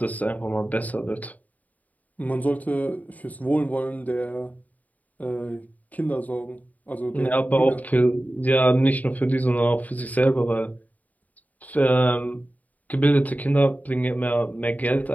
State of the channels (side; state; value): right; late; 0.074 ms